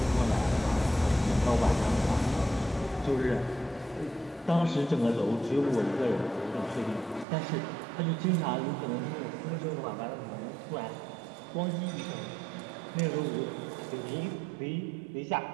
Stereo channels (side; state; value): left; drops out; at 7.2 s